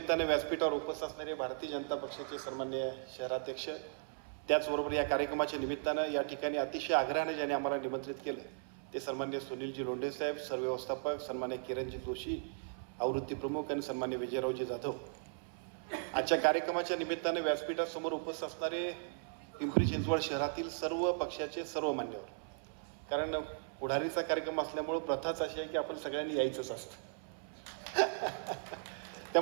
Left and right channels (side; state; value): left; silent; 53 dB below the other